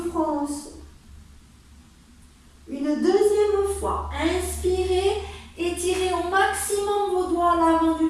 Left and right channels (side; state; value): both; identical; correlation 1.00